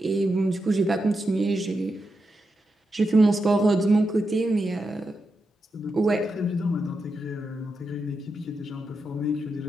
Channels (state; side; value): normal; both; correlation 0.87